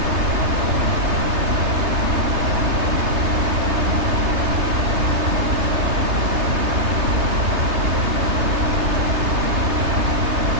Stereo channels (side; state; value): left; late; 3.2 ms